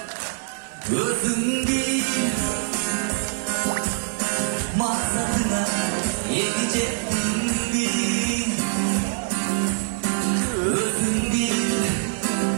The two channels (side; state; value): left; silent; digital silence